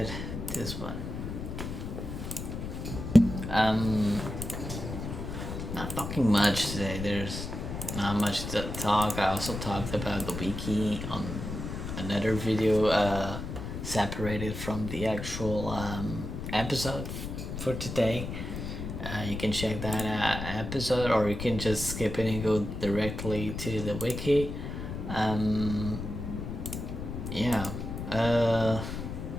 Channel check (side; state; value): left; noise; rumble, 6 dB below the sound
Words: this one. Not talking much today. There's not much to talk. I also talked about the wiki on another video, separated from the actual episode for today. You can check that episode, or you can just skip it and go directly to the wiki. Yeah.